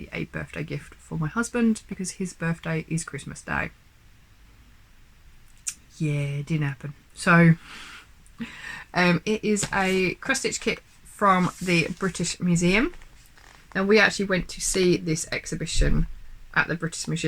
a birthday gift for my husband because his birthday is Christmas Day. Yeah, it didn't happen. So it is a cross stitch kit from the British Museum. And we actually went to see this exhibition at the British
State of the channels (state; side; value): identical; both; correlation 1.00